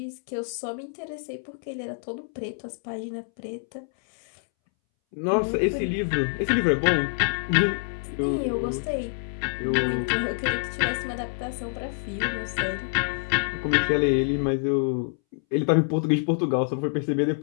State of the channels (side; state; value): right; silent; 61 dB below the other